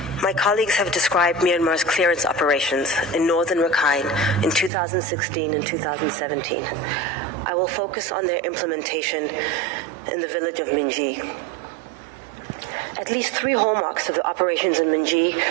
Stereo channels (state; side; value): drops out; left; at 4.7 s